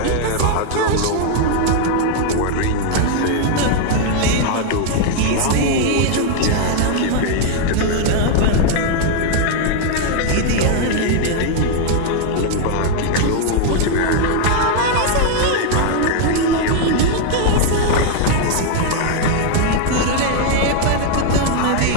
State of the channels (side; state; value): both; different; correlation 0.00